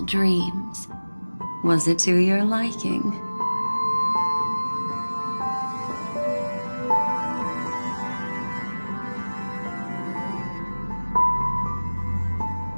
dreams. Was it to your liking?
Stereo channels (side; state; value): both; inverted; correlation -1.00